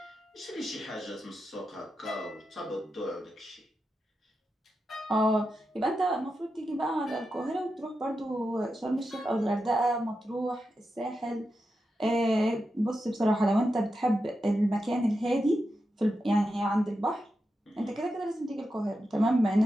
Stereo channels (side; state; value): both; normal; correlation 0.88